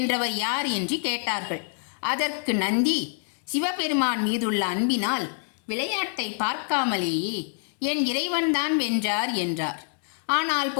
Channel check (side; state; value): right; silent; 61 dB below the other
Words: யார் என்று கேட்டார்கள். அதற்கு நந்தி, சிவபெருமான் மீதுள்ள அன்பினால் விளையாட்டை பார்க்காமலேயே என் இறைவன்தான் வென்றார் என்றார். ஆனால்